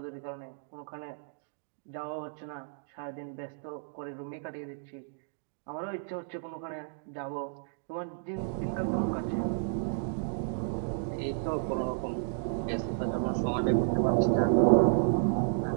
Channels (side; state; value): left; silent; digital silence